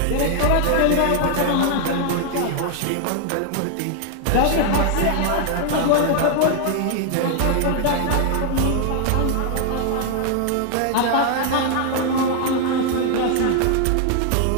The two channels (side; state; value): both; different; correlation 0.00